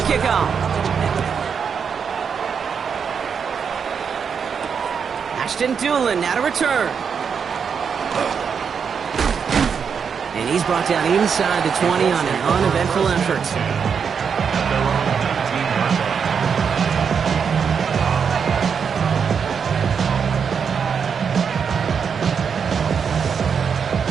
kickoff. Ashton Doolin now to return. And he's brought down inside the 20 on an uneventful effort.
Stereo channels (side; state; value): left; quieter; 6.6 dB